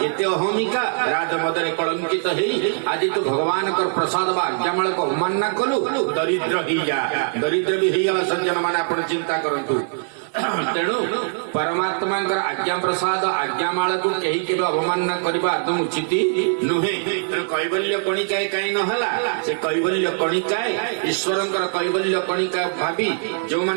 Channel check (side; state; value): left; silent; 64 dB below the other